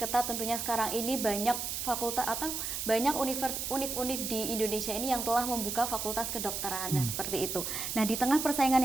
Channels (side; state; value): right; noise; hiss, 3 dB below the sound